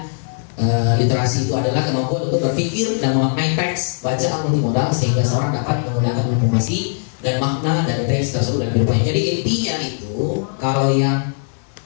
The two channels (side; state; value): right; silent; 63 dB below the other